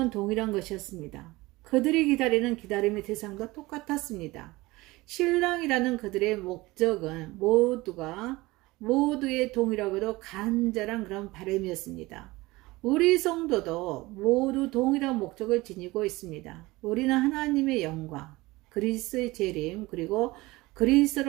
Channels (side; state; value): left; quieter; 20.8 dB